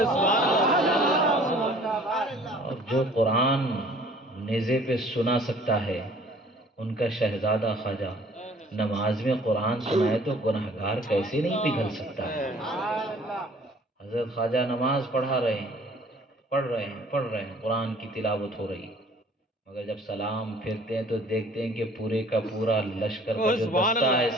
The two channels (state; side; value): normal; both; correlation 0.53